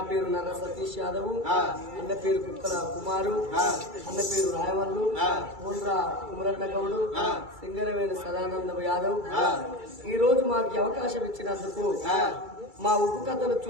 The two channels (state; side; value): late; left; 2.3 ms